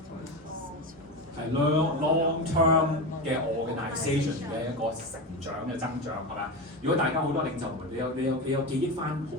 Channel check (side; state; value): both; normal; correlation 0.20